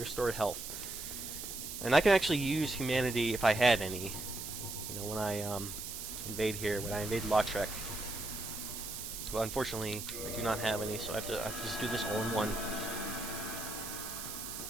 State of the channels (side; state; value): right; noise; hiss, 7 dB below the sound